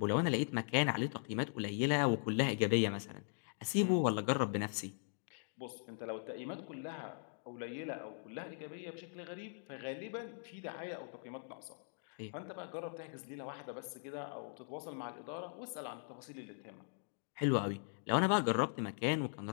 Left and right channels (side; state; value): right; silent; digital silence